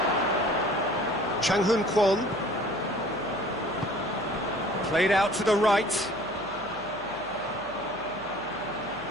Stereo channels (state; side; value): noise; left; hum, 23 dB below the sound